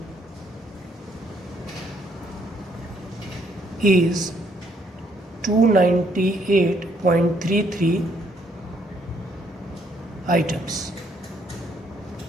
is 298.33 items.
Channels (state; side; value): normal; both; correlation 0.69